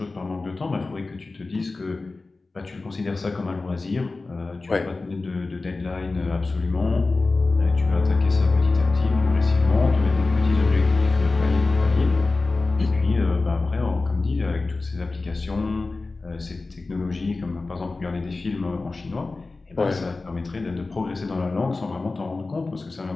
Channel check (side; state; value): right; quieter; 3.6 dB